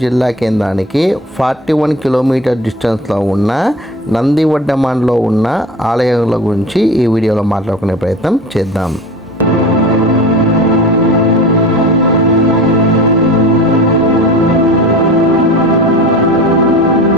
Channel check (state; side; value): normal; both; correlation 0.36